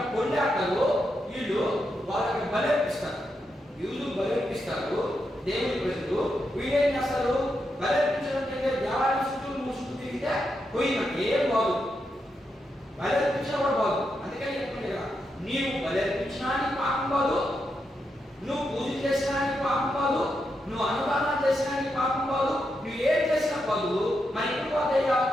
పొందాటలు, వీళ్ళు వాళ్ళకి బలర్పిస్తారు. యూదు బలర్పిస్తారు దేవుని ప్రజలు. వీళ్ళేం చేస్తారు? బలర్పించడం కంటే దేవాలయం చుట్టూ మూసుకు తిరిగితే పోయినట్టు ఏం బాగు. బలర్పించిన కూడా బాగు. అందుకని చెప్పండి కదా, నీవు బలర్పించడానికి పాపం కాదు, నువ్వు పూజ చేసడానికి పాపం కాదు, నువ్వు అనుదానం చేసడానికి పాపం కాదు, నువ్వు ఏం చేసినా కాదు. మరి ఎప్పుడు పోతాయ్యా?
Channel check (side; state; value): both; normal; correlation 0.84